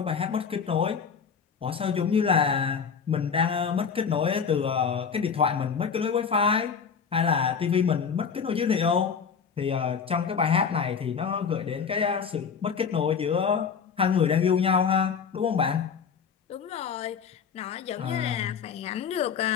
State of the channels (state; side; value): quieter; right; 6.5 dB